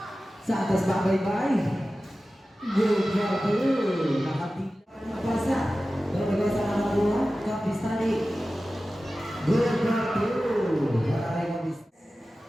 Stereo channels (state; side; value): normal; both; correlation 0.95